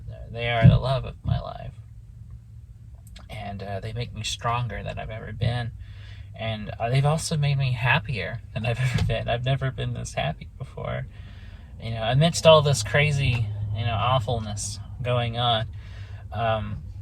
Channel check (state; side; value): identical; both; correlation 1.00